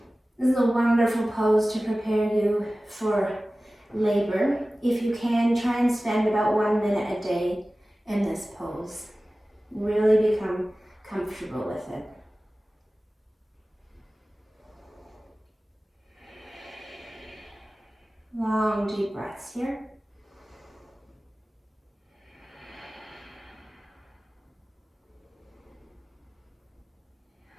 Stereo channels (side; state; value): both; normal; correlation 0.97